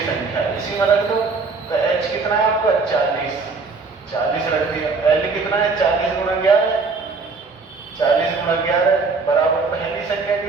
संख्या, इसी में रख दो। तो H कितना है आपका? 40 रख दिया। L कितना है? 40 गुणा 11, 40 गुणा 11 बराबर पहली संख्या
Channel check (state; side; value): quieter; left; 4.3 dB